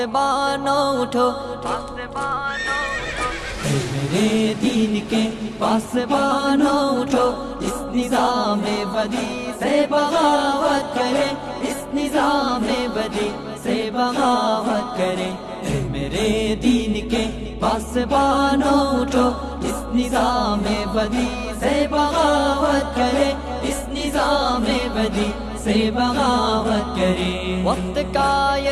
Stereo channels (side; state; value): both; identical; correlation 1.00